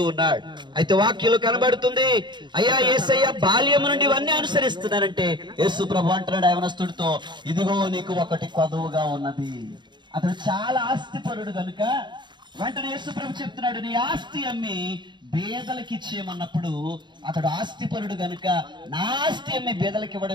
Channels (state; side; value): late; left; 0.22 ms